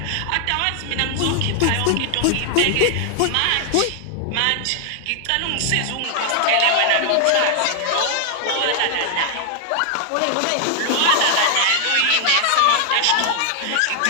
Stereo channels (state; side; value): different; both; correlation 0.00